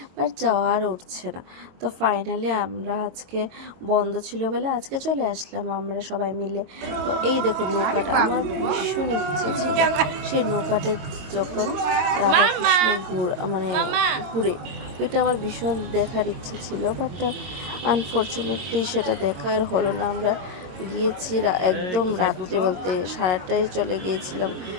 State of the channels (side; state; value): left; late; 22 ms